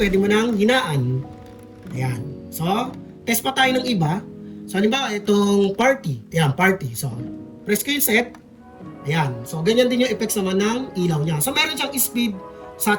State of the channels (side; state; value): both; identical; correlation 1.00